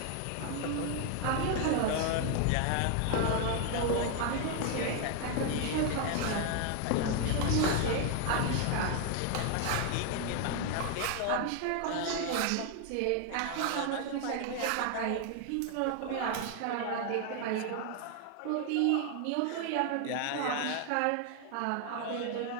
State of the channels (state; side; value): different; both; correlation 0.01